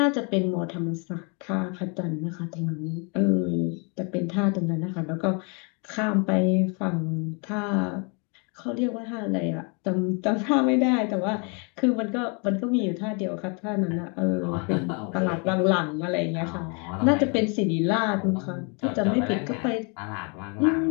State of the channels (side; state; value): right; quieter; 34.8 dB